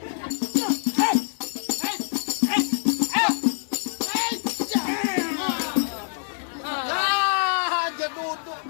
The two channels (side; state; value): right; silent; digital silence